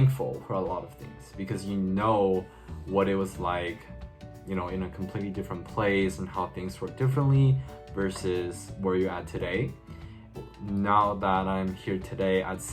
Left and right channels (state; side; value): identical; both; correlation 1.00